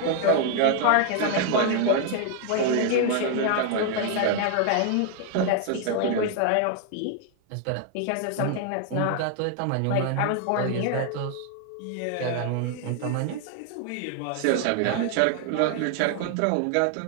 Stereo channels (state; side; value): different; both; correlation 0.00